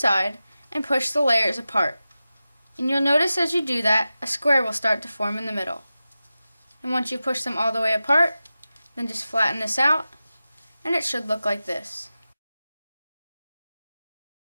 and push the layers apart. And you'll notice as you do that, a square will start to form in the middle. And once you push them all the way apart, then just flatten this out, and it should look like this.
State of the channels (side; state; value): both; inverted; correlation -0.94